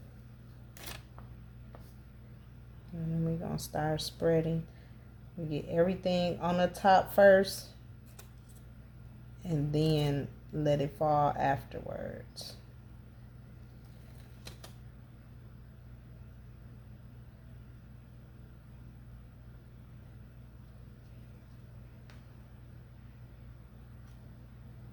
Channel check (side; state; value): both; identical; correlation 1.00